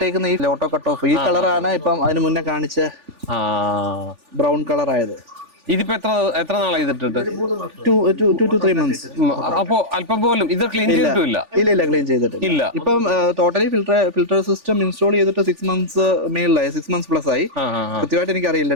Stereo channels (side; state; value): left; late; 3.4 ms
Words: ഈ ഓട്ടോ കട്ട് ഓഫ് ഈ കളറാണ് ഇപ്പം അതിന് മുന്നേ കാണിച്ച ബ്രൗൺ കളർ ആയത്. ഇതിപ്പോ എത്ര നാളായി ഇതിട്ടിട്ട്? 2 to 3 months. അപ്പോ അല്പം പോലും ഇത് ക്ലീൻ ചെയ്തിട്ടില്ല? ഇല്ല, ക്ലീൻ ചെയ്തിട്ടില്ല. ഇപ്പം ടോട്ടലി ഫിൽട്ടർ സിസ്റ്റം ഇൻസ്റ്റാൾ ചെയ്തിട്ട് 6 months മേളിലായി, 6 months പ്ലസ് ആയി. കൃത്യമായിട്ട് എനിക്ക്